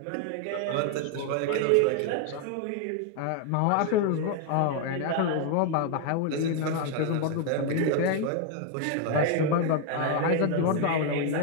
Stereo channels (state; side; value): different; both; correlation 0.01